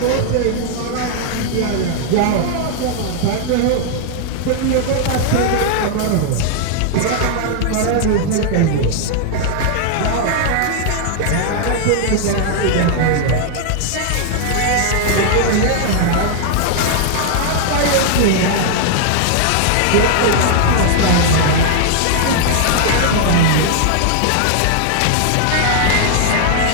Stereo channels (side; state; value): both; different; correlation -0.01